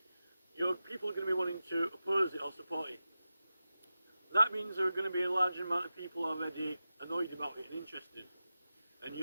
people are going to be wanting to oppose it or support it. That means there are going to be a large amount of people already annoyed about it and interested. And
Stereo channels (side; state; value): both; inverted; correlation -0.92